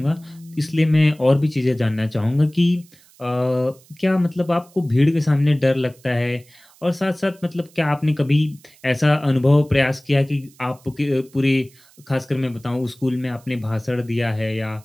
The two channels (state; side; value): noise; right; hiss, 28 dB below the sound